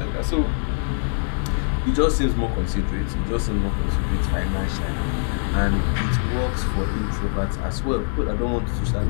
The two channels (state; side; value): silent; right; digital silence